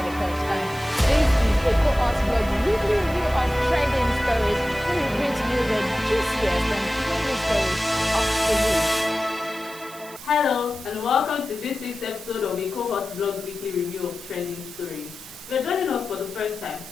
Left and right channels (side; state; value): right; noise; hiss, 18 dB below the sound